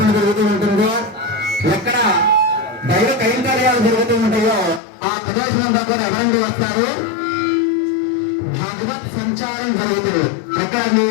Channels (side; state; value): right; drops out; at 4.8 s